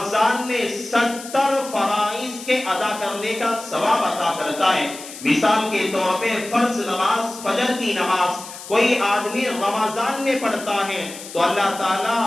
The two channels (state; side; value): noise; left; hiss, 13 dB below the sound